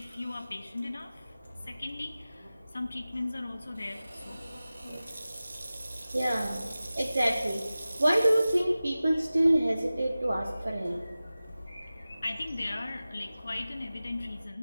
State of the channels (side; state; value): both; inverted; correlation -0.96